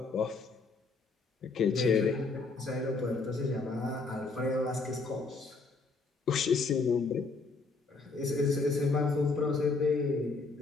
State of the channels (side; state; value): right; quieter; 3.9 dB